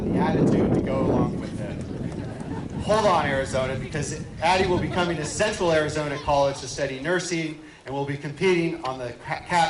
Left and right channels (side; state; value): both; identical; correlation 1.00